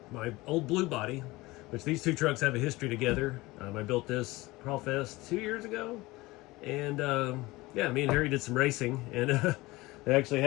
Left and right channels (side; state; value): right; quieter; 20.7 dB